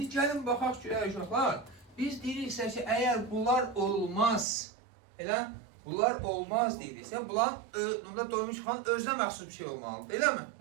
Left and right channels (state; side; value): drops out; left; at 4.5 s